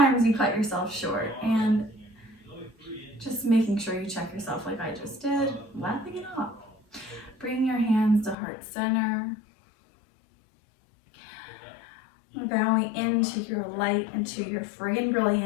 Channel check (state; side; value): drops out; right; at 8.3 s